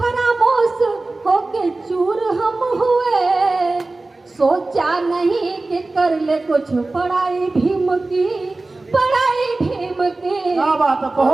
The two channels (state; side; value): quieter; left; 3.2 dB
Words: होके चूर हम हुए, सोचा नहीं कि कर ले कुछ पढ़ाई भीम की, पढ़ाई भीम की। क्या बात है,